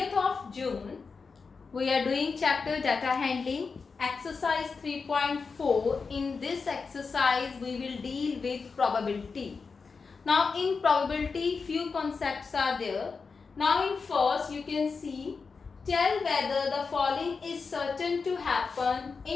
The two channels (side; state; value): right; quieter; 4.9 dB